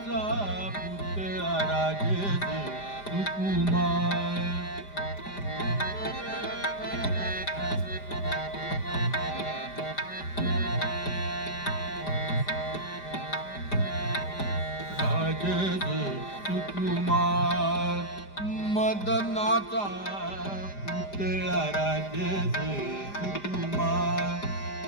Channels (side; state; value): right; late; 5.0 ms